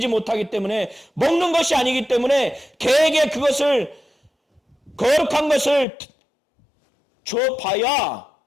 못하기 때문에, 먹는 것이 아니기 때문에 개에게 그것을, 거룩한 것을 줘봐야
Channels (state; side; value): drops out; right; at 5.9 s